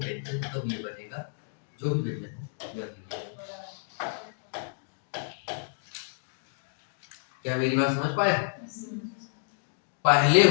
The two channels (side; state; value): right; silent; digital silence